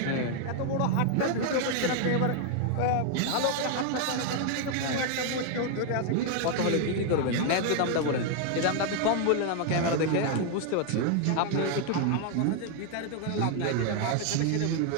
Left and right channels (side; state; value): both; different; correlation 0.00